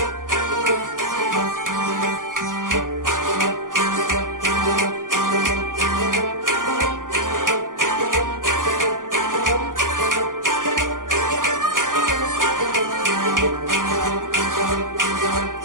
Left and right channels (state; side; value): late; left; 0.89 ms